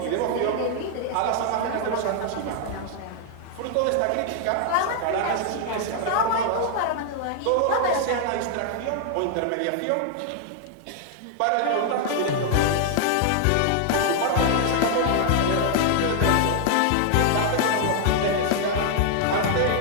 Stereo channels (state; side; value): different; both; correlation 0.00